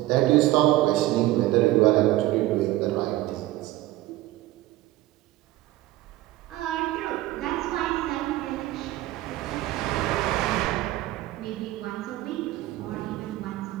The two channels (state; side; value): quieter; left; 16.5 dB